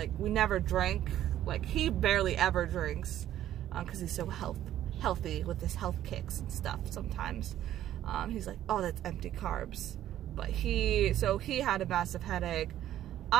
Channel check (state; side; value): quieter; left; 12.3 dB